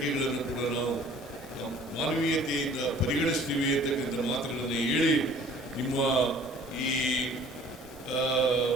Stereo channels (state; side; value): normal; both; correlation 0.52